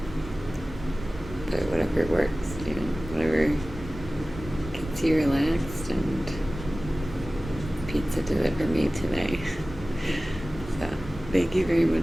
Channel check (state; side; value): normal; both; correlation 0.97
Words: But whatever works, whatever gets you relaxed, and pizza did it for me today. So, thank you very